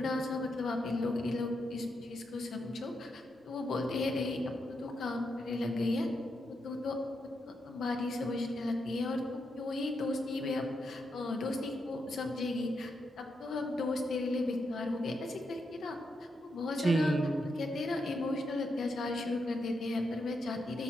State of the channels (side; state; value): both; normal; correlation 0.83